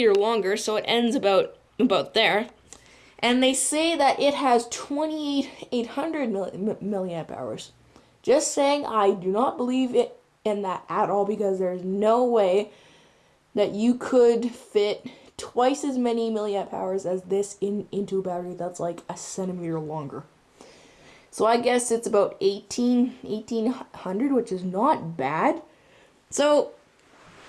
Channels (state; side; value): identical; both; correlation 1.00